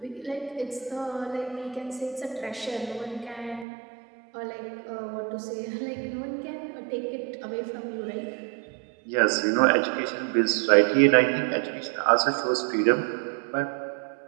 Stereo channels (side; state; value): left; drops out; at 3.7 s